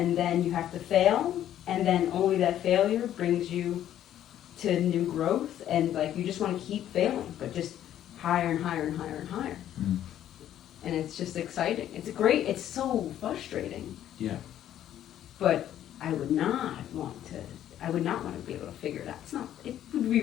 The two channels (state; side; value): quieter; right; 11.4 dB